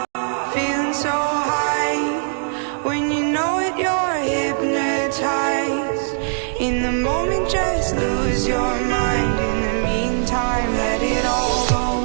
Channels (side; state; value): left; silent; digital silence